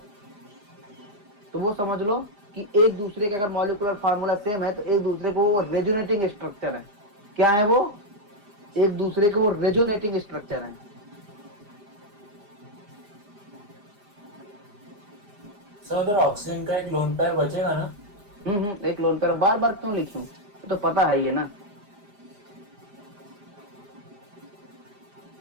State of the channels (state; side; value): late; left; 4.9 ms